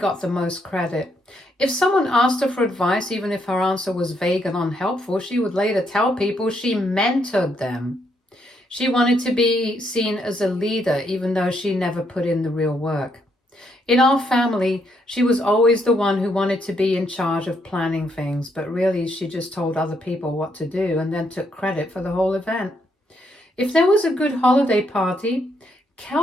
the most credit. If someone asked her for advice, even if her answer was vague and unhelpful, she would later tell people she mentored them. She wanted to be seen as a leader, even though she never put in the real work. In our family, she was always the one who wanted to be in charge of planning things, but really she just told other people what to do and then took credit for the whole event. If there was a good holiday party,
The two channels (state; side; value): normal; both; correlation 0.75